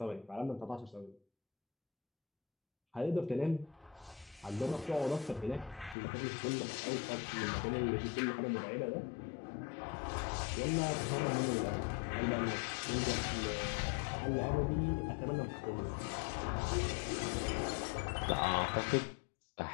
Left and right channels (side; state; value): right; drops out; at 6.0 s